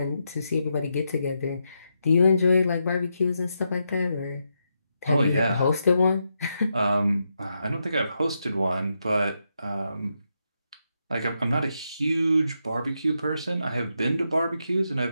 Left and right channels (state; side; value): inverted; both; correlation -0.83